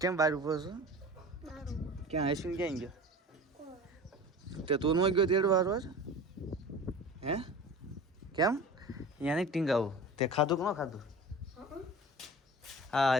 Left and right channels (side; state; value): both; normal; correlation 0.37